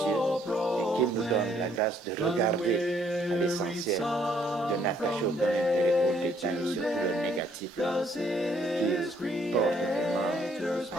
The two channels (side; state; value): both; normal; correlation 0.66